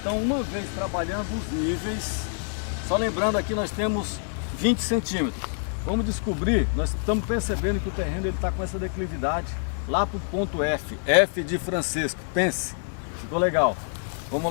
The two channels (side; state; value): right; silent; digital silence